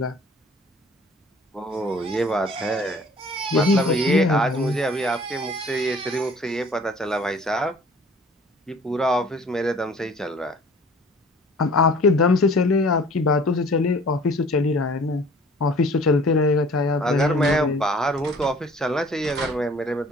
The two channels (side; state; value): both; normal; correlation 0.51